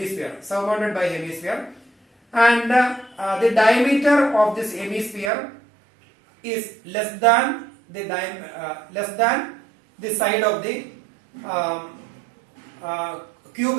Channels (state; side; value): drops out; left; at 5.3 s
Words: and the diameter of this hemisphere is less than the side of the